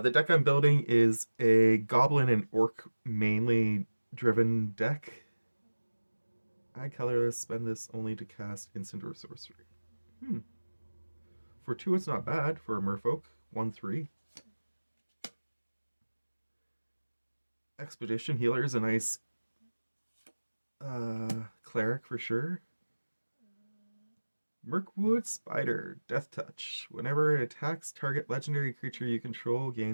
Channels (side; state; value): both; inverted; correlation -1.00